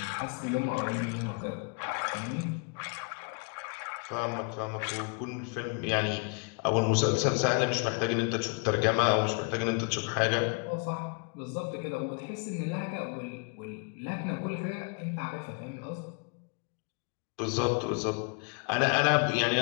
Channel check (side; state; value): right; quieter; 36.1 dB